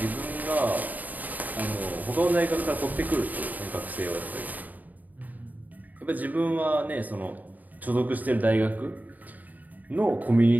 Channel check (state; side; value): late; left; 0.080 ms